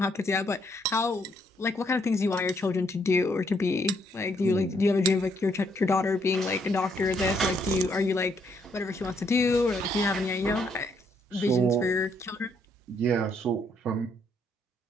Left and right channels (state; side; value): normal; both; correlation 0.72